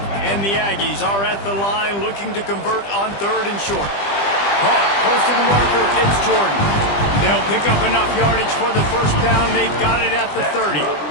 And the Aggies are at the line looking to convert on 3rd and short. Caught close to the marker, it's Jordan. They'll pick up enough yardage for the first down. They've got it at the 30.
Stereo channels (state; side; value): late; right; 20 ms